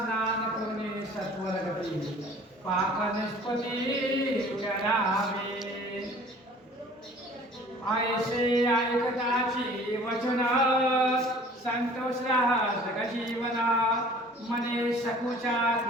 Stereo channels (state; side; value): normal; both; correlation 0.49